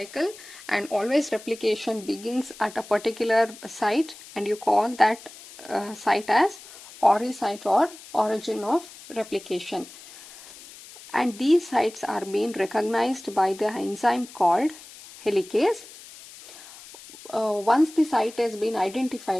and always replication begins at a particular site, and you call that site as ori site or origin of replication. And these sites are being recognized by the enzyme called helicase. Once the site has been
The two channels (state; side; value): noise; left; hiss, 18 dB below the sound